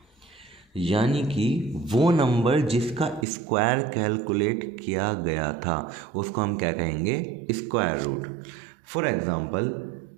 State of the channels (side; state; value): left; drops out; at 3.2 s